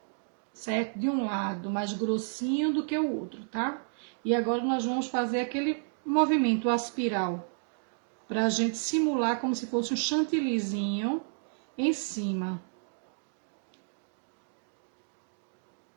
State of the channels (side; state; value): left; silent; digital silence